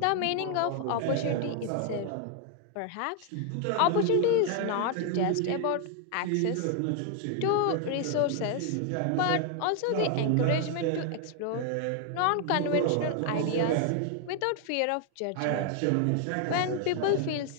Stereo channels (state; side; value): different; both; correlation 0.00